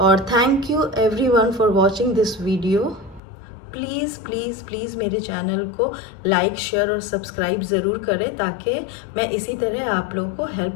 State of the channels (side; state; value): right; drops out; at 3.2 s